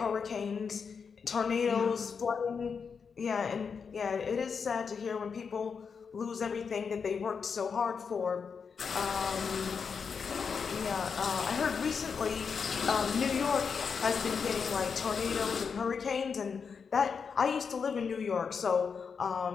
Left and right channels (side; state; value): right; quieter; 5.9 dB